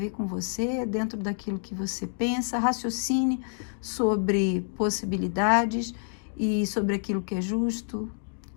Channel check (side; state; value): right; silent; digital silence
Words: com você, dentro daquilo que você pensa, raciocine sobre possibilidades e sobre aquilo que é justo,